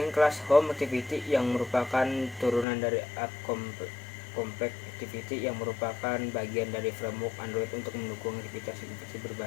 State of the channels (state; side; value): drops out; right; at 2.7 s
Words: kelas home activity yang merupakan turunan dari app compact activity yang merupakan bagian dari framework Android untuk mendukung aktivitas